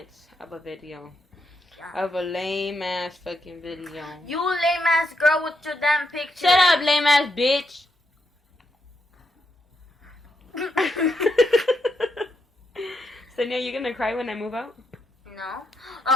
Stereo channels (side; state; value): both; normal; correlation 0.81